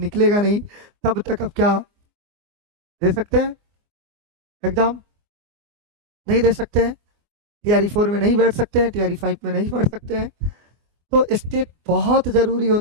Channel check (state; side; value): late; left; 24 ms